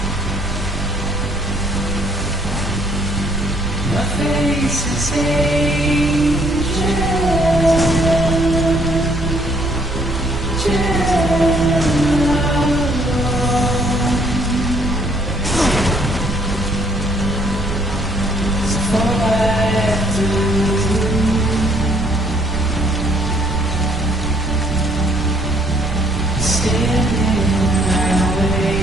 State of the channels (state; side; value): noise; right; rumble, 8 dB below the sound